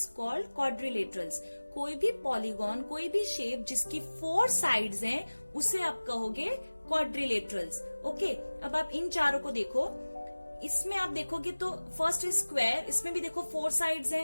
called quadrilaterals. कोई भी पॉलीगॉन, कोई भी शेप जिसकी 4 साइड्स हैं उसे आप कहोगे quadrilaterals. ओके, अब आप इन चारों को देखो, इसमें आप देखोगे तो फर्स्ट इज स्क्वायर, इसमें भी देखो 4 साइड्स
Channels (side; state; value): both; inverted; correlation -1.00